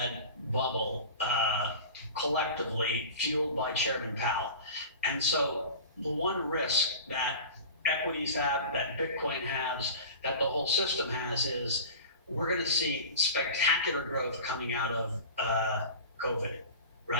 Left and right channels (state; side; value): inverted; both; correlation -0.36